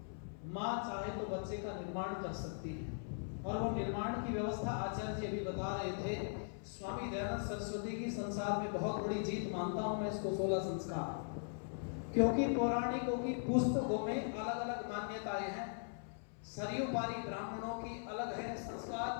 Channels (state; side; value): silent; right; 51 dB below the other